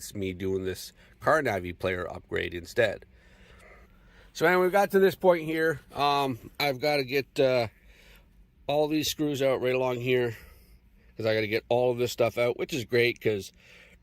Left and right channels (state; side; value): identical; both; correlation 1.00